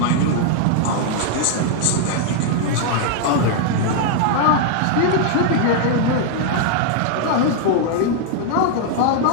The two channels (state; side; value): different; both; correlation 0.00